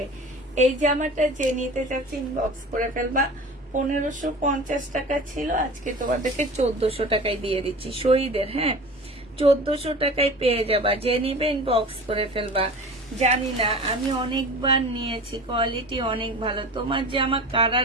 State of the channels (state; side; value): normal; both; correlation 0.37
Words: এই জামাটা যে নিতে চাচ্ছি ইনবক্স করে ফেলবা। 1550 টাকা ছিল, আজকে তোমাদেরকে 1400 টাকায় দিয়ে দিচ্ছি শহীদের। হ্যাঁ, 1400 টাকায় পেয়ে যাবা, যে নিবে ইনবক্স করে ফেলবা। জানি না, আমি অনেকবার নিয়েছি, কোয়ালিটি অনেক ভালো। তোমার জামা কারা